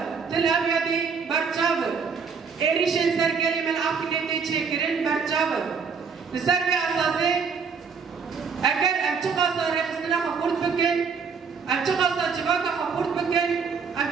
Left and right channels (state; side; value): quieter; left; 5.7 dB